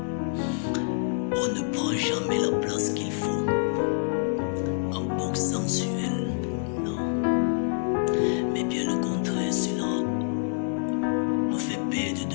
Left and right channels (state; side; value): silent; right; digital silence